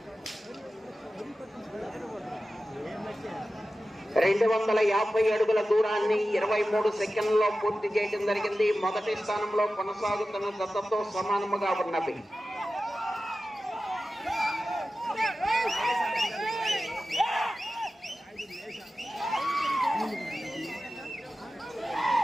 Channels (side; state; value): both; normal; correlation 0.94